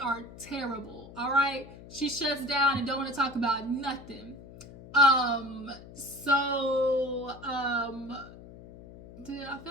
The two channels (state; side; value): noise; left; hum, 17 dB below the sound